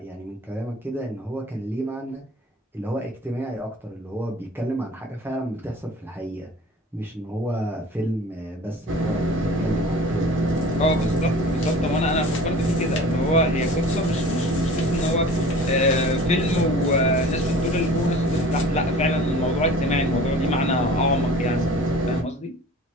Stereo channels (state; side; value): normal; both; correlation 0.42